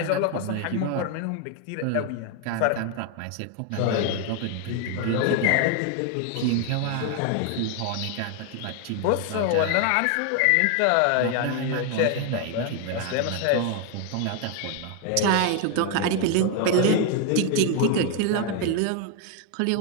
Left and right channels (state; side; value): different; both; correlation 0.00